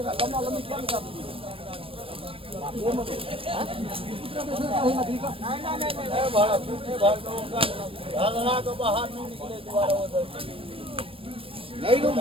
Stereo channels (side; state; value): left; late; 0.26 ms